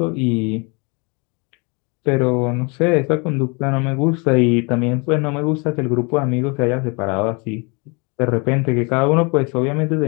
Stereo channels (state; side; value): quieter; right; 31.2 dB